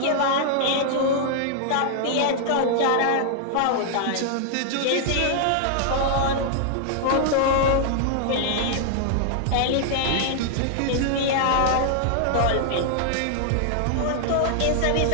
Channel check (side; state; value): both; different; correlation -0.01